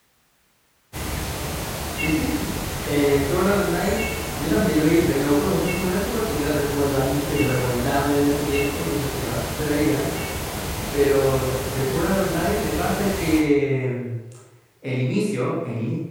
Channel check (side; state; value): both; identical; correlation 1.00